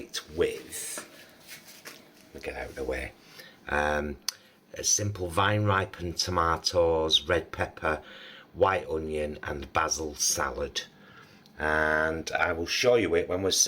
with, let me get out of the way, a simple vine ripened tomatoes, red pepper, white onion and basil salad. And I will show you it when we're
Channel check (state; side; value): identical; both; correlation 1.00